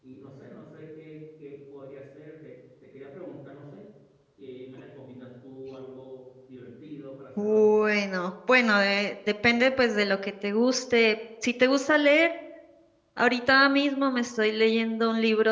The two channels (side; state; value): both; identical; correlation 1.00